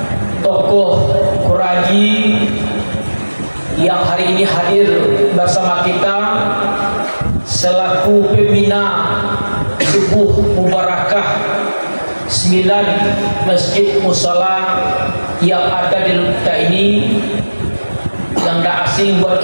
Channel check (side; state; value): both; inverted; correlation -1.00